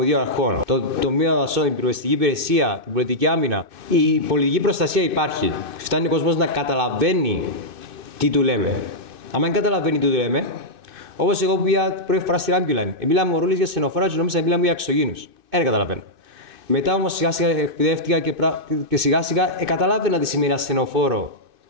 αρχών, το τομείο δασών, την πυροσβεστική υπηρεσία, την πολιτική άμυνα. Η πολιτική προστασία υπάρχει. Φτάνει ο κόσμος να καταλαβαίνει τι του λέμε. Αν δεν καταλαβαίνει τι του λέμε, όπως εγώ που πήγα πρώτη φορά στην Ambuline, μιλάμε ο ρόλος για στενοφόρα και νόμιζα να μιλάμε για εξωγήινους. Δεν καταλαβαίνω. Μετά όμως σιγά σιγά εκπαιδεύτηκα και σιγά σιγά καταλάβαινα τι σημαίνει ασθενοφόρο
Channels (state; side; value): late; left; 2.6 ms